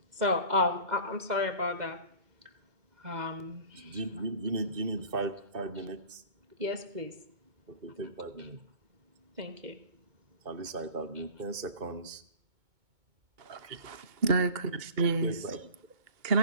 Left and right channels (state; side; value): late; left; 2.2 ms